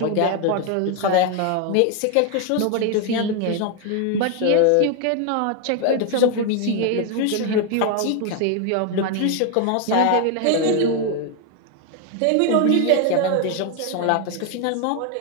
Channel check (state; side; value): different; both; correlation 0.01